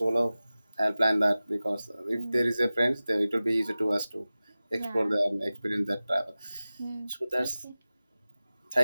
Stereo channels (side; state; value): both; inverted; correlation -0.96